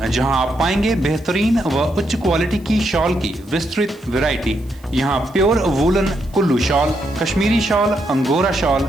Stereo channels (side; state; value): right; noise; hiss, 28 dB below the sound